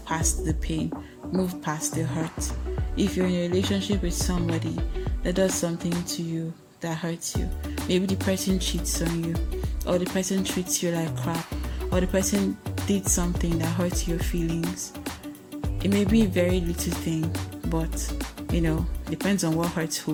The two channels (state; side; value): identical; both; correlation 1.00